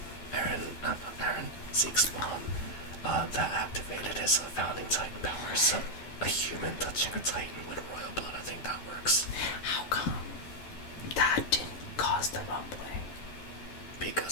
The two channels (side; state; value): right; late; 12 ms